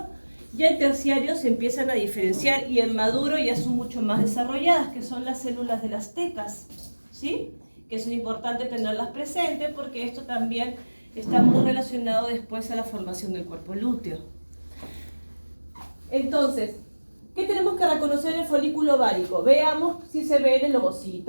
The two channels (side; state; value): both; inverted; correlation -1.00